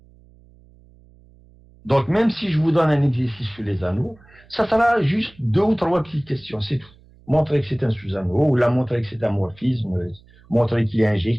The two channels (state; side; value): noise; right; hum, 27 dB below the sound